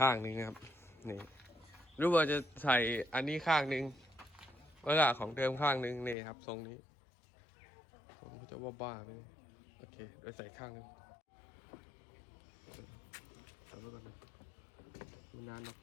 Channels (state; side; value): drops out; right; at 6.2 s